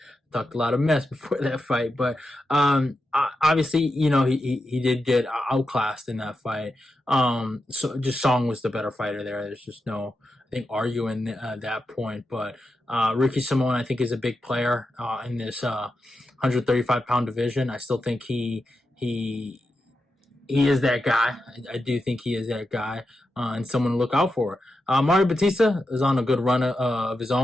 talked a lot of mess before that fight, but obviously, he did get outclassed in that fight. So just Song was the better fighter there. There's just no, I think, arguing that point. But Ricky Simone, I think, is a big player in this 135-pound division. I still think he is that guy. I do think he is that guy, and someone to look out for. Mario Bautista is on a good run of his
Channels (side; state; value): both; normal; correlation 0.88